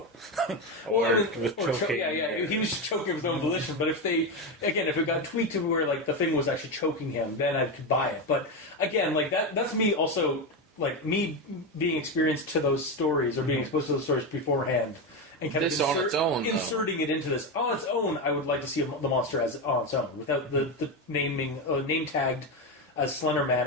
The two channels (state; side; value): normal; both; correlation 0.13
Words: or choking. He was choking with his own volition. But if it got tweaked to where like the thing was actually choking him, then I could buy it. But again, like that's me also. Like, me being experienced to those stories, or being exposed to those stories beforehand, and kind of inserting it into this. On its own, I would like to see the monster as on its own, without the name tagged as Slenderman,